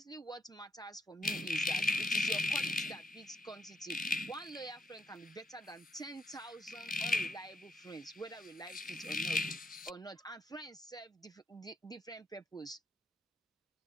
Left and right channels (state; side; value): normal; both; correlation 0.79